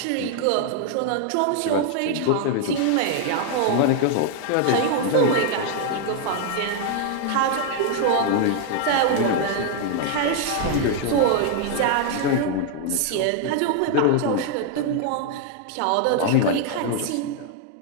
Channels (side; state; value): both; different; correlation 0.00